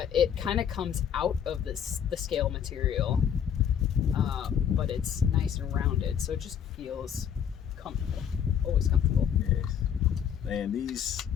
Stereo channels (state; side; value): quieter; right; 8.6 dB